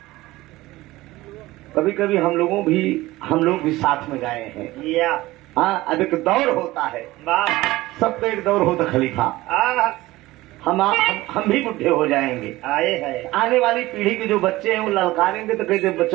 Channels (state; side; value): quieter; left; 18.4 dB